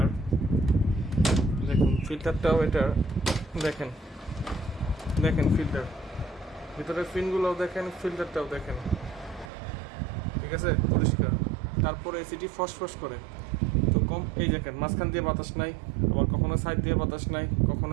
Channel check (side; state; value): left; drops out; at 9.5 s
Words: দেখুন, ফিল্টারটাও এটার দেখেন দেখেন ফিল্টার, ভিতরের ফিনগুলোও দেখেন, ফিল্টারটাও দেখেন, ঠিক আছে, পরিষ্কার। তারপরে এসিটি ফসফস করে। তো কম এই দেখেন, মাঝখান দিয়ে বাতাস নাই, আবার কখনো সাইড দিয়ে বাতাস নাই,